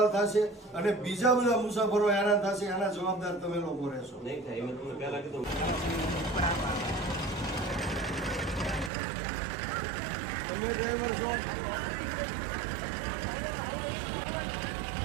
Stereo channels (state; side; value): drops out; left; at 8.9 s